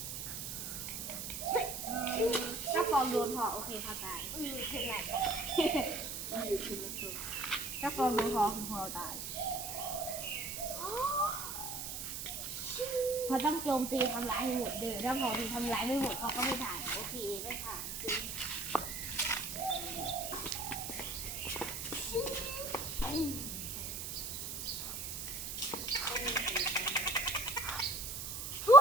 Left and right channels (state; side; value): noise; right; hiss, 6 dB below the sound